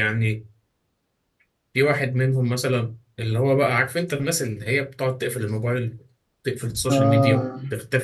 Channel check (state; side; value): identical; both; correlation 1.00